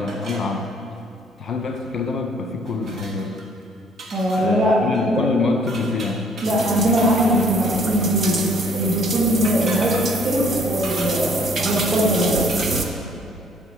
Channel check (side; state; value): both; normal; correlation 0.60